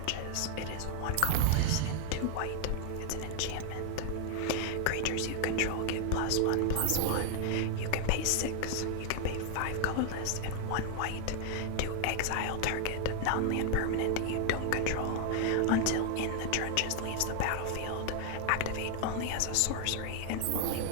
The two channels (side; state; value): both; different; correlation 0.00